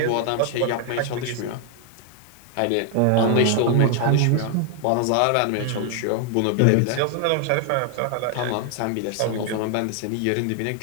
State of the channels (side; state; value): both; different; correlation 0.00